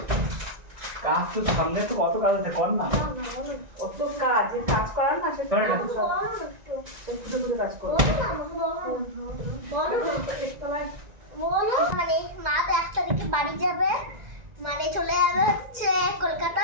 কাজ তো সামনে তো কত কাজ আছে, কর না অত কাজ, যে কাজ করার না সে কাজ করো। বলো মানে মা তো 1 তারিখে বাড়ি যাবে, মানে চলে যাবে হচ্ছে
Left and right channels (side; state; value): left; late; 1.9 ms